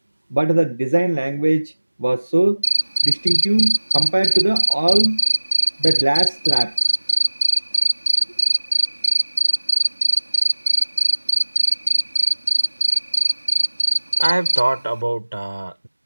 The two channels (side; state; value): both; inverted; correlation -1.00